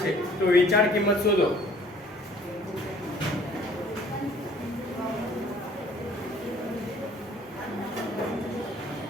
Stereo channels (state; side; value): normal; both; correlation 0.55